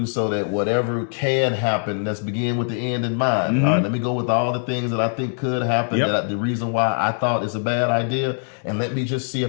so that whatever can happen, let's begin with the end in mind. Mm-hmm. All right, let me go with all the things that I think could happen, the reason why I thought it's a bad idea, and let me just see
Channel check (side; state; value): right; silent; digital silence